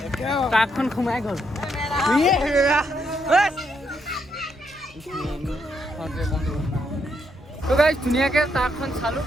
ট্ৰাকখন সোমাই গ'ল তো গাইজ ধুনীয়াকৈ ট্ৰাকখন চালোঁ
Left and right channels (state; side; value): normal; both; correlation 0.77